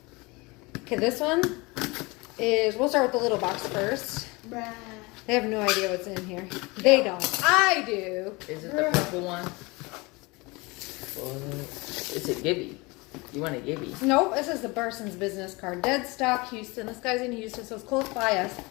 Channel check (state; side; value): quieter; right; 25.2 dB